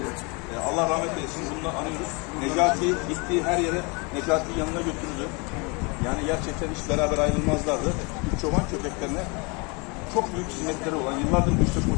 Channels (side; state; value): right; quieter; 30.1 dB